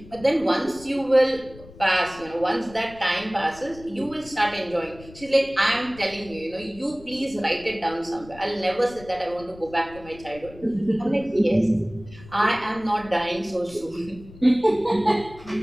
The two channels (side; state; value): left; noise; rumble, 19 dB below the sound